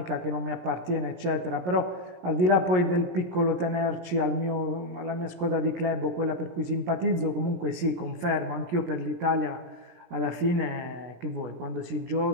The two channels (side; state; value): left; late; 17 ms